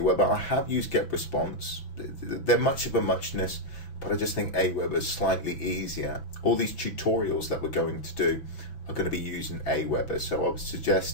I have used Get Response. They're much of a muchness, but I just think Aweber is slightly easier. All these tutorials that we're going to do are going to be using Aweber, so I would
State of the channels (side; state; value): right; late; 6.0 ms